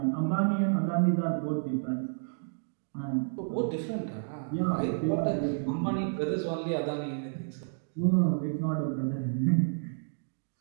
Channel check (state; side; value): silent; left; digital silence